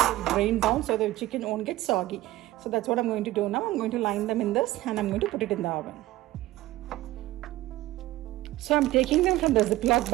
will drain down so the chicken won't get soggy. So that's what I'm going to do now. I'm going to line them in this and I'm going to put it in the oven. So I'm taking them from the Ziploc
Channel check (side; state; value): left; quieter; 16.6 dB